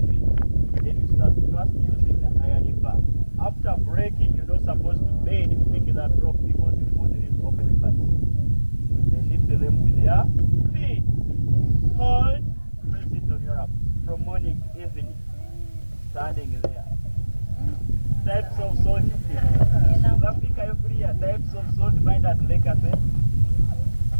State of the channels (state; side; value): inverted; both; correlation -1.00